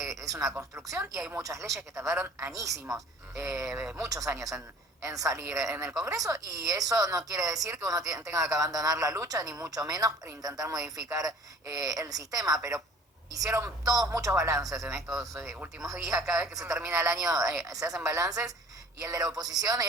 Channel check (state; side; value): normal; both; correlation 0.49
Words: una construcción y hay muchas leyes que tardaron añísimos, muchos años en salir en el Congreso, y eso no quiere decir que uno tenga que abandonar la lucha, ni mucho menos intentar modificar el sistema, pero hicieron todos muchos balances en estos últimos días. Cada vez que se termina el año se hacen balances, y el de la oposición